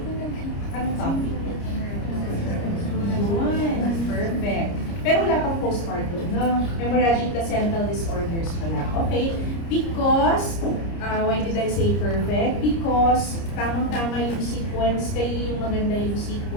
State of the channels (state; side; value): late; right; 30 ms